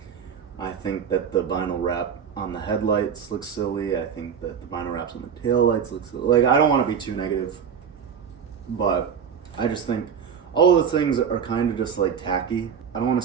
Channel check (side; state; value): left; quieter; 7.4 dB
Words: I think that the vinyl wrap on the headlights looks silly. I think that the vinyl wraps on the taillights look silly. Like, I don't want to be too negative, but I just think all of the things are kind of just like tacky. I don't want